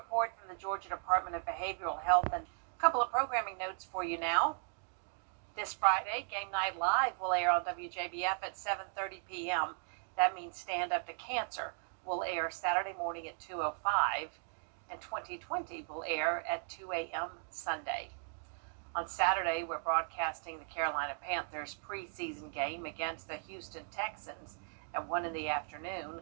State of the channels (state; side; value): silent; left; 53 dB below the other